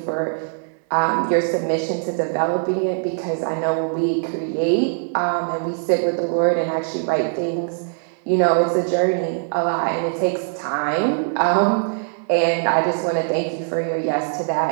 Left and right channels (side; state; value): left; silent; 63 dB below the other